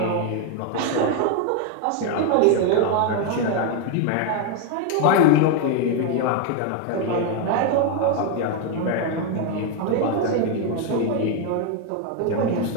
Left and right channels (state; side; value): different; both; correlation 0.01